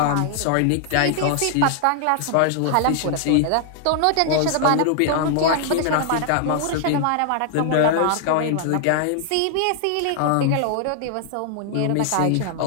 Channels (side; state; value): both; different; correlation 0.00